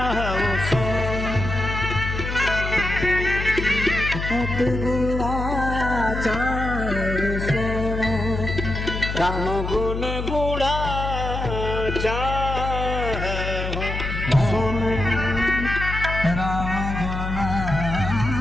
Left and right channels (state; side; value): noise; left; hum, 4 dB below the sound